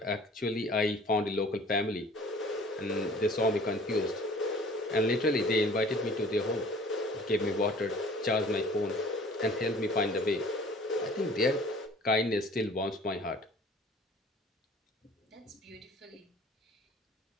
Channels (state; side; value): normal; both; correlation 0.50